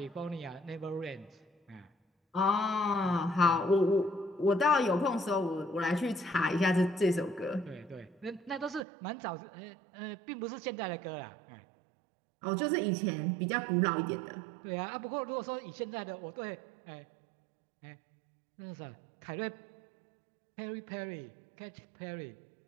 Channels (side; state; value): left; drops out; at 8.8 s